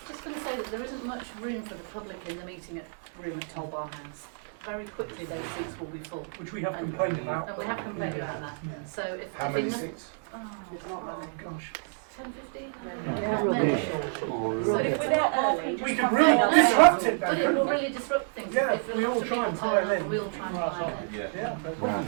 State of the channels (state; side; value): silent; left; 59 dB below the other